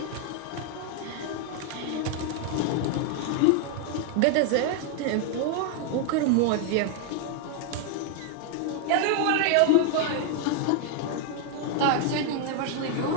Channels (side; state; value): both; different; correlation 0.01